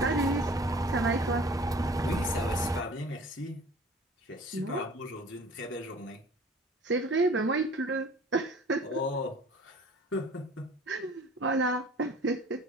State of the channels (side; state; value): both; normal; correlation 0.46